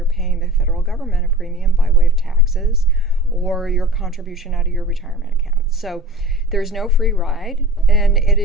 paying the federal government a premium by way of taxes or your contribution out of your retirement account. So there's no free ride, and it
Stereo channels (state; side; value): normal; both; correlation 0.39